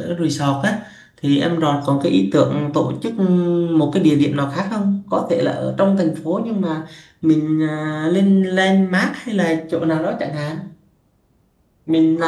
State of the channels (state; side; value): identical; both; correlation 1.00